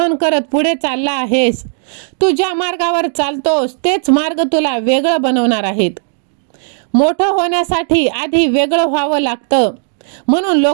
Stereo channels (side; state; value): left; silent; digital silence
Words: करत पुढे चालला आहेस, तू ज्या मार्गावर चालतोस तेच मार्ग तुला वेगळं बनवणार आहेत. मोठं होण्यासाठी आधी वेगळं व्हावं लागतं. म्हणून